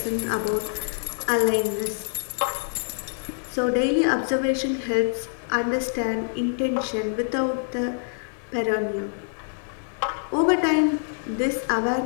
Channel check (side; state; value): right; silent; digital silence